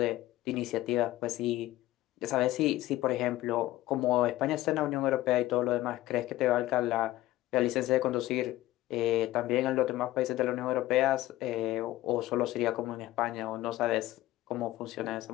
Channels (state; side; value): quieter; right; 16.0 dB